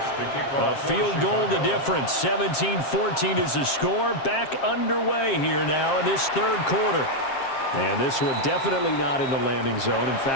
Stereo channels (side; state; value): right; late; 7.5 ms